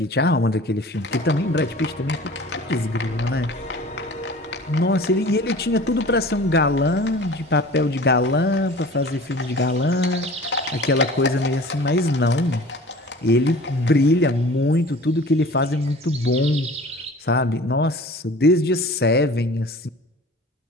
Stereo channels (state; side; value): normal; both; correlation 0.42